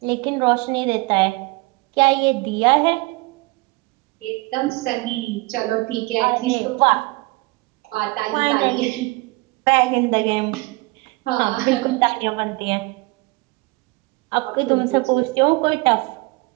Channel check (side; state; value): left; quieter; 24.6 dB